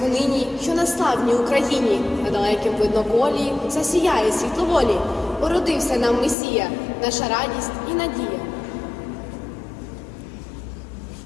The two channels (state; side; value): drops out; right; at 6.4 s